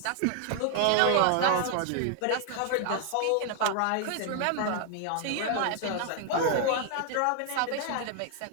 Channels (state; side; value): different; both; correlation 0.00